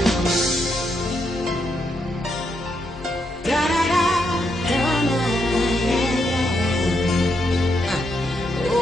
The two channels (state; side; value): normal; both; correlation 0.79